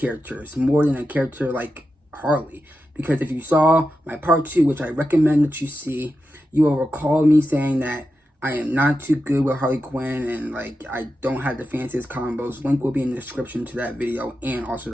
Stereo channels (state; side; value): normal; both; correlation 0.90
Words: more than a character like Harley. Because if you saw my part 2, which I recommend that you see, you will recall me saying that I am not too good with Harley Quinn and like I don't have the fanciest combos. Link will be in the description to that video and also